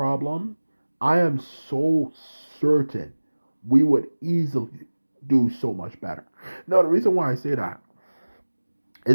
I am so certain we would easily do so much better. Now, the reason why I say that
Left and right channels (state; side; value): inverted; both; correlation -1.00